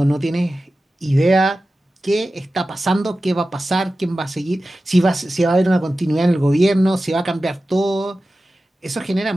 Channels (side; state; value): both; normal; correlation 0.94